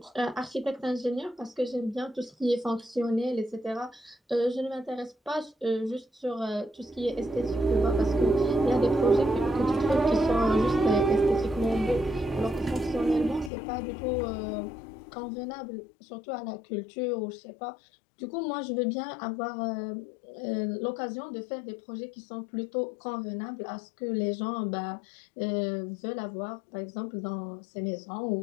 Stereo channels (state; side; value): drops out; right; at 13.5 s